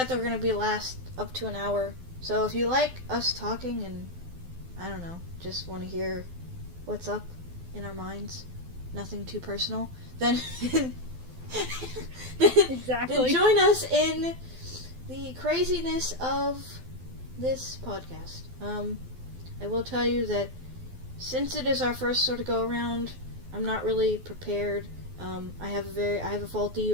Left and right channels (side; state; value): left; late; 12 ms